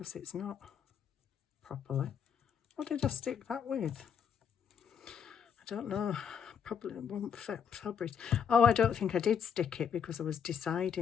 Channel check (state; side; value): quieter; right; 7.5 dB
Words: it's not properly. What did I stick that with? I don't know. Probably won't fabric. Oh, I don't think I did stick it because I was